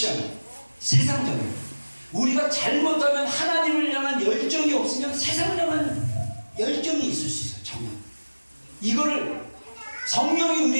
세상적인. 우리가 잘못하면 하나님을 향한 열정이 없으면 세상을 향한 열정이 있을 수 있어요. 정말 이거를 성령이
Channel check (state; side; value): inverted; both; correlation -1.00